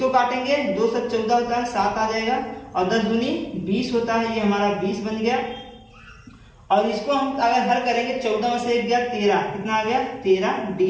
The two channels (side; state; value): both; identical; correlation 1.00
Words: काटेंगे, 2 से 14 होता है, 7 आ जाएगा और 10 दूनी 20 होता है, ये हमारा 20 बन गया। और इसको हम अगर हल करेंगे, 14 में से 1 गया 13, कितना आ गया, 13